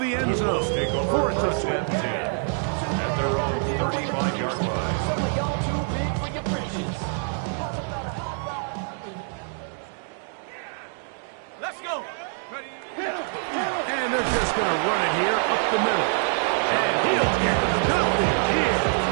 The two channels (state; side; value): silent; left; 56 dB below the other